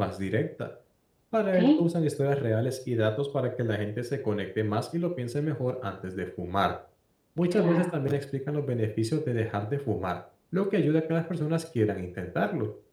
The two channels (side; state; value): both; identical; correlation 1.00